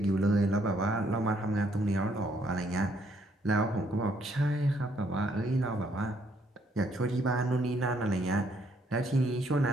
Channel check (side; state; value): both; normal; correlation 0.69